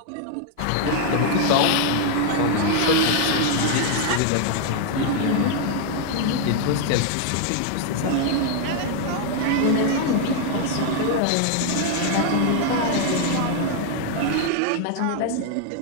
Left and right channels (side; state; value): both; different; correlation 0.00